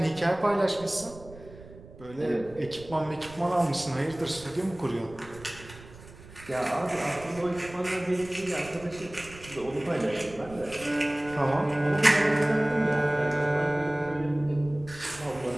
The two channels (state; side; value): noise; right; rumble, 18 dB below the sound